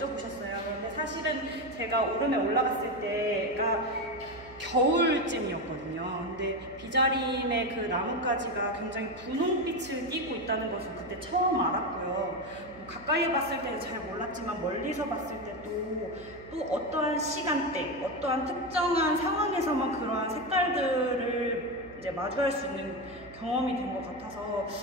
근데 사실은 제가 오름에 올라갔을 때가 겨울쯤이었거든요. 근데 비자림의 그 나뭇가지가 굉장히 분홍빛을 띠고 있다는 것을 그때 처음 알았고요. 가까이에 봤을 때는 잘 몰랐지만 멀리서 봤을 때도 또 어떠한 시간대, 어떠한 특정한 상황에서만 그러한 색깔들을 이제 마주할 수 있는 경험이 된 것 같아서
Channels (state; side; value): noise; right; hum, 20 dB below the sound